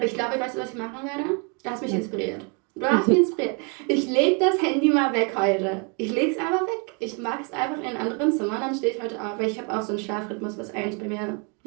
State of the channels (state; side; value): quieter; left; 34.8 dB